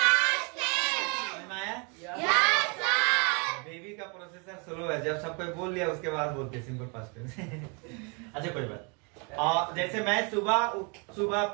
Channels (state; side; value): quieter; left; 33.5 dB